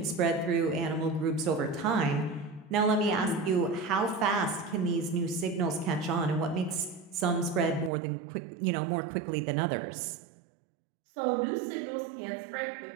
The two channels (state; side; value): drops out; left; at 7.9 s